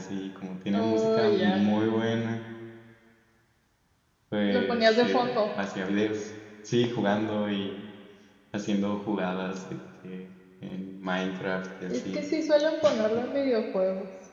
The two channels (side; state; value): both; identical; correlation 1.00